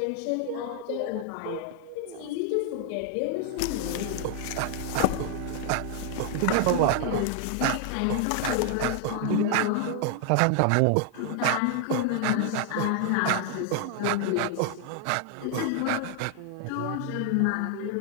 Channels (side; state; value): both; different; correlation 0.00